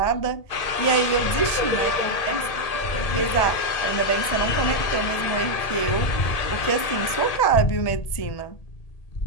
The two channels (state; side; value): late; right; 1.8 ms